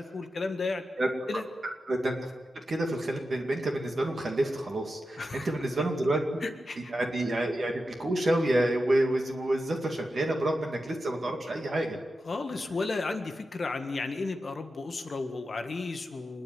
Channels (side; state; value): both; normal; correlation 0.90